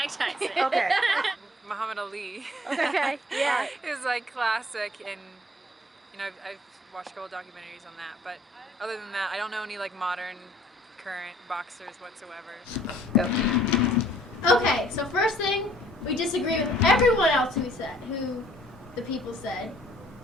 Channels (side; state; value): both; normal; correlation 0.58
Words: Tyson. Okay. Muhammad Ali. Okay, yeah. It was like classic, and I've watched a couple documentaries on that. But other than that, I don't know any like modern, current boxers whatsoever. Okay, so first thing, we disagree with everyone else who the people said.